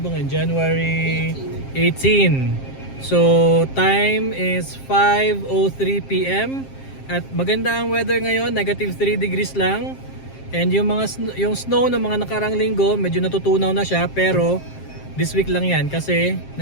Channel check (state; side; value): late; right; 7.5 ms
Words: ba ngayon? January 18. So time is 5:03 PM at maganda ang weather ngayon, negative 3 degrees lang. And yung snow ng mga nakarang linggo, medyo natutunaw na siya, pero this week lang 'yan kasi